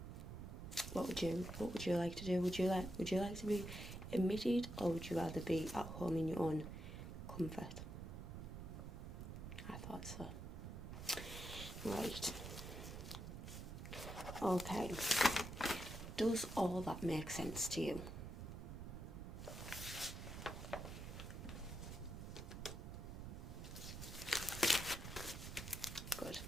What would you like to do? Would you like to be admitted, or would you rather be at home in your own comfort? I thought so. Right. Okay. Does all that make sense to you?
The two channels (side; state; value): right; noise; rumble, 8 dB below the sound